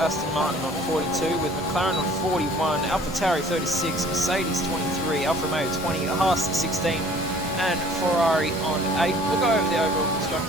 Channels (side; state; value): both; normal; correlation 0.52